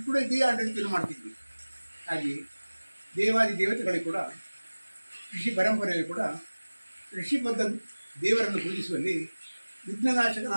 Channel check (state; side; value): inverted; both; correlation -1.00